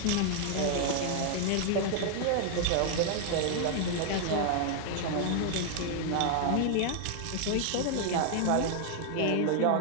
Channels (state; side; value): different; both; correlation 0.00